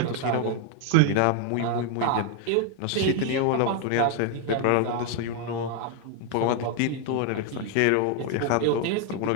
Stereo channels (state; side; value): different; both; correlation 0.00